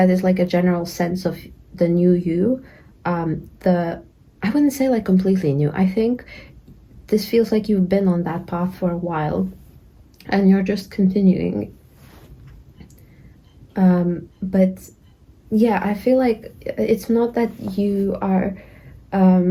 is like a general sense of the new you. I wouldn't say like completely new. I think this feels like you've been on that path for a while and you're just continuing. But yeah, I feel like it's not that you are,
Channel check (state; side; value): identical; both; correlation 1.00